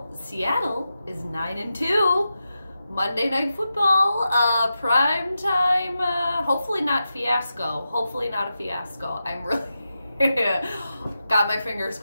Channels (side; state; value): both; inverted; correlation -0.90